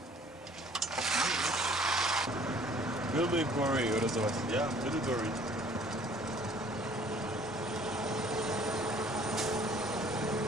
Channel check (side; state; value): both; normal; correlation 0.55